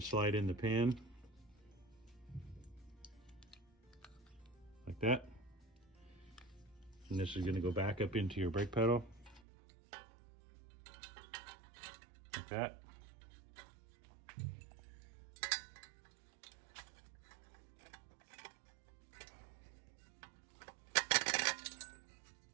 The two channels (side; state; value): left; drops out; at 9.4 s